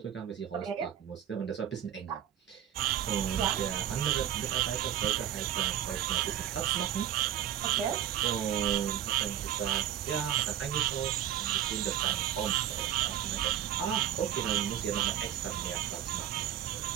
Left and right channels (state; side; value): quieter; left; 10.8 dB